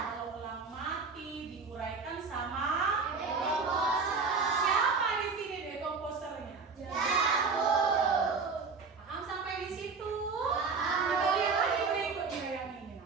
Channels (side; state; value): left; quieter; 4.8 dB